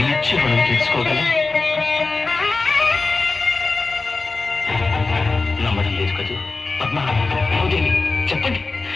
మనం తెలుసుకోగలం? నమ్మడం లేదు కదూ పద్మ, భూదేవి, చెప్పండి,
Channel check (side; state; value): right; quieter; 3.8 dB